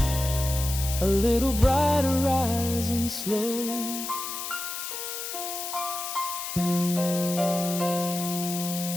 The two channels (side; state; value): left; noise; hiss, 6 dB below the sound